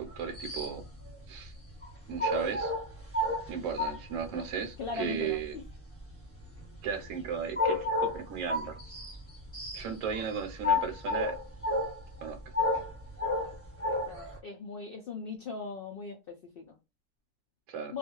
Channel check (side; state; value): both; normal; correlation 0.00